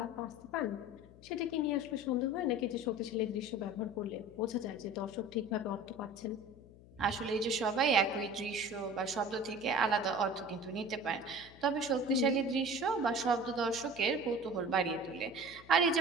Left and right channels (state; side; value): noise; left; hum, 21 dB below the sound